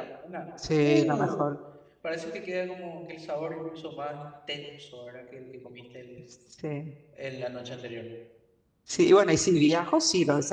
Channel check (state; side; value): identical; both; correlation 1.00